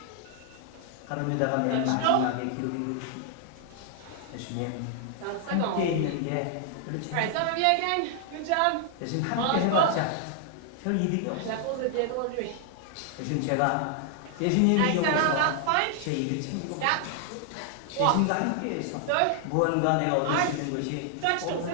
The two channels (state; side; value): different; both; correlation 0.00